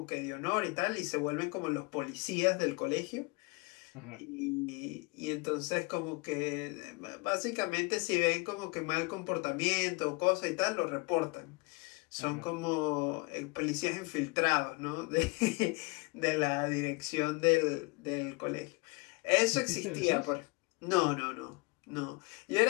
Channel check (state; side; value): quieter; right; 27.5 dB